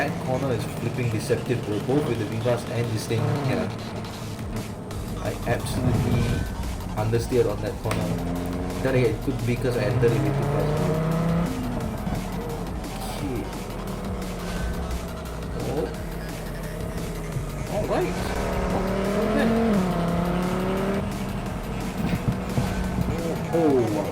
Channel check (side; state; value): both; identical; correlation 1.00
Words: corner is flipping deceptive, bro, both with the Vivace and this thing. Yeah, I absolutely understeered on that corner. Then again, it could be because I entered it with too fast. Okay. Oh. Alright. Okay. Oh wow,